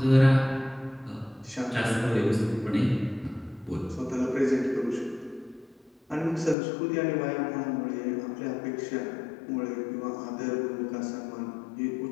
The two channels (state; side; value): drops out; right; at 6.6 s